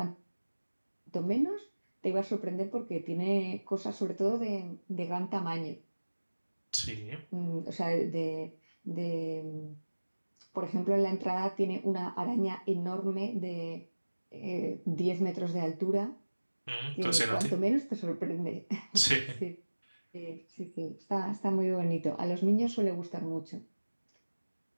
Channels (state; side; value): inverted; both; correlation -1.00